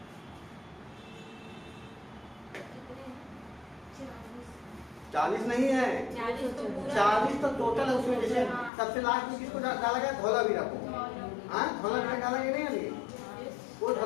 कितने? 40 नहीं है, 40 तो टोटल है उसमें। जैसे सबसे लास्ट में किसको डाला गया, धौलावीरा को, हाँ धौलावीरा डाला गया नहीं अभी, वो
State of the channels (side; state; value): right; drops out; at 8.7 s